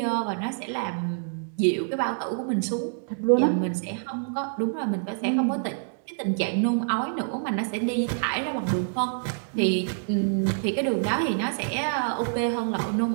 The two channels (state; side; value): silent; left; digital silence